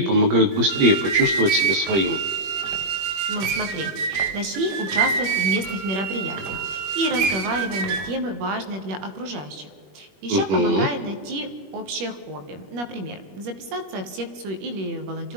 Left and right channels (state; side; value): late; left; 21 ms